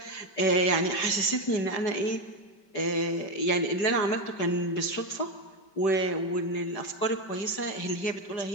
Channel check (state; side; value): late; right; 5.2 ms